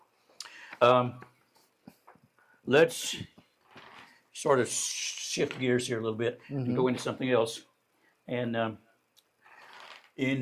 Let's sort of shift gears here a little bit and go into something else. And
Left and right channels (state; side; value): identical; both; correlation 1.00